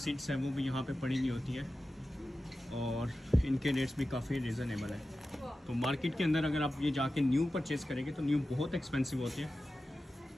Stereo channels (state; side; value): normal; both; correlation 0.94